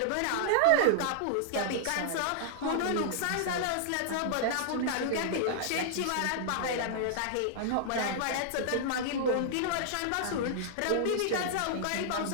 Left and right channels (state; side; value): different; both; correlation -0.01